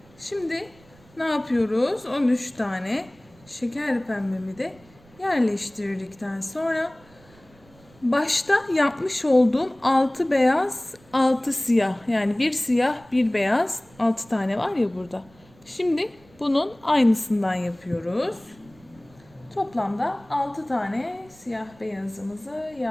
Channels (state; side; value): noise; right; rumble, 27 dB below the sound